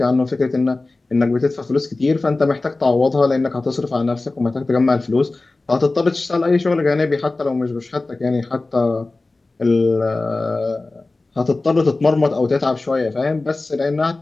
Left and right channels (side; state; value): right; quieter; 3.2 dB